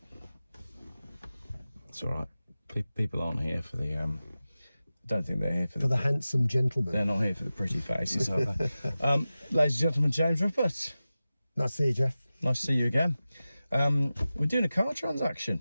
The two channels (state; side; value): inverted; both; correlation -0.95